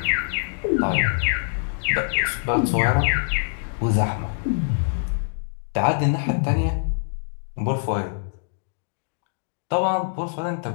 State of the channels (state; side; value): silent; right; digital silence